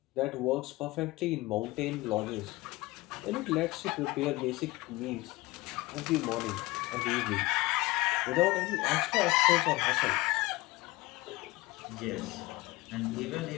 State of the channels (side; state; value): right; quieter; 20.8 dB